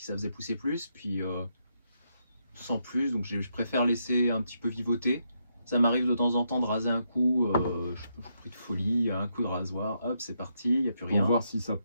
ça faisait pousser plus, puis sans plus, donc je préfère laisser un petit peu vivoter. Ça m'arrive de temps en temps de raser un coup, je pris de folie, un coup de rasoir, hop, c'est parti, il n'y a plus Pour rien. voir si ça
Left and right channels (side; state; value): both; inverted; correlation -0.79